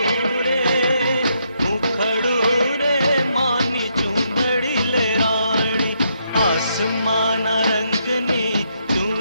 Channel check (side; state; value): both; inverted; correlation -0.76